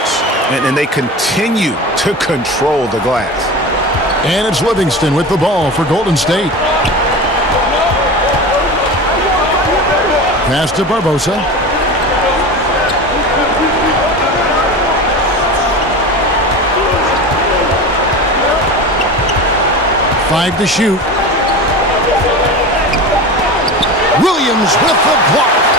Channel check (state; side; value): normal; both; correlation 0.29